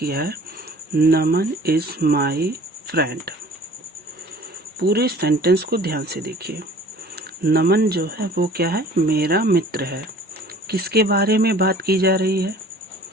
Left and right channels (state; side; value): normal; both; correlation 0.49